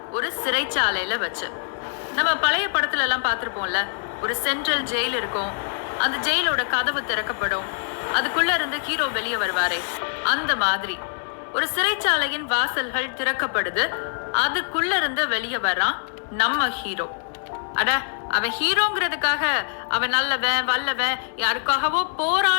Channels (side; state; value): right; silent; digital silence